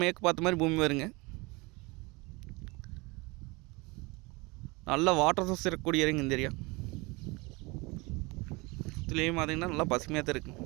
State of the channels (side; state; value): left; quieter; 25.4 dB